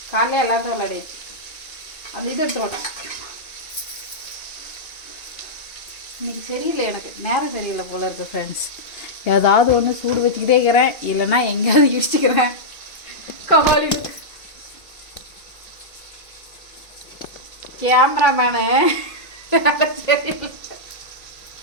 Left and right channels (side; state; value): right; late; 2.3 ms